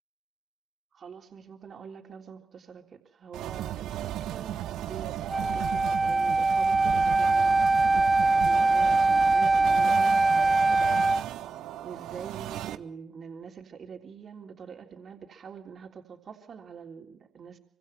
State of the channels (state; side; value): quieter; left; 3.1 dB